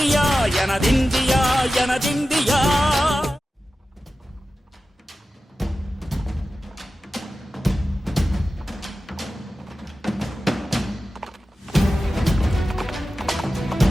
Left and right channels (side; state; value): both; normal; correlation 0.94